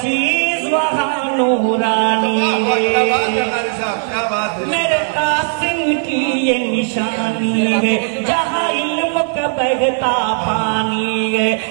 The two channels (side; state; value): left; silent; digital silence